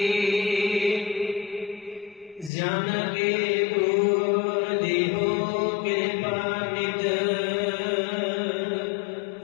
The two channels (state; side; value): drops out; right; at 2.5 s